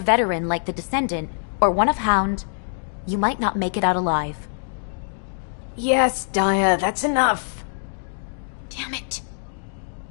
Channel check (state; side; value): silent; right; digital silence